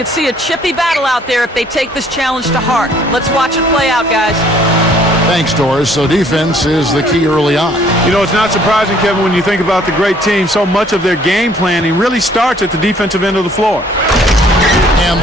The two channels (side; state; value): both; normal; correlation 0.60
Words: see a chippy battle out there if they take this challenge to heart. Let's watch it play out, guys. Thanks, Doris. So defense is the key early on. You know, it's not surprising, Kevin, when you think about the great team. So much of their game planning really starts at the defensive end of the floor. And